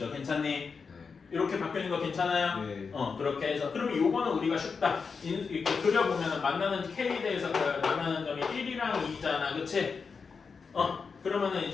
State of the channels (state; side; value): quieter; right; 5.3 dB